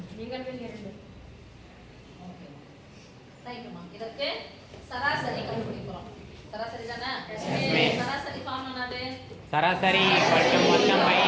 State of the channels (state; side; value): identical; both; correlation 1.00